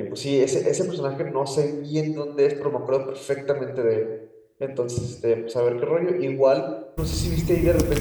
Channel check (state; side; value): identical; both; correlation 1.00